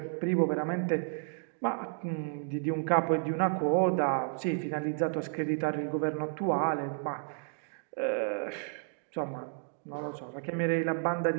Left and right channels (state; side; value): silent; left; digital silence